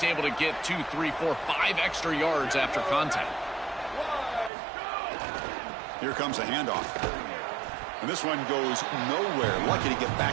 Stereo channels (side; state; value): left; drops out; at 4.5 s